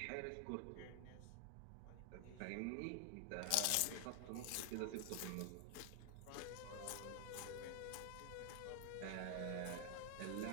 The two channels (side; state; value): both; different; correlation 0.00